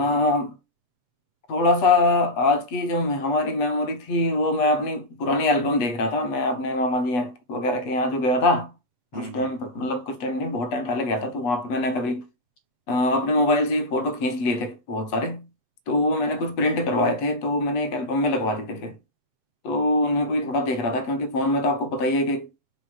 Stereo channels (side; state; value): right; late; 8.2 ms